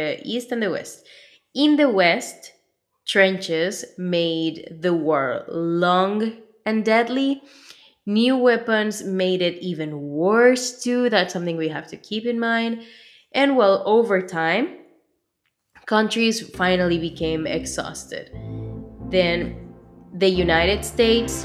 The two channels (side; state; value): both; identical; correlation 1.00